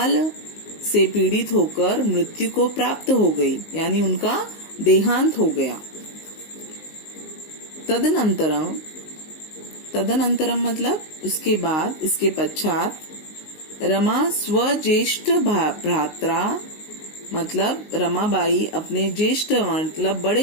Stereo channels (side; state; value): right; late; 19 ms